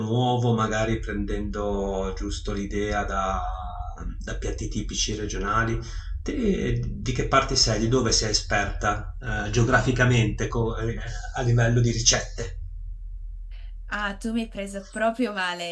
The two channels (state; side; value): identical; both; correlation 1.00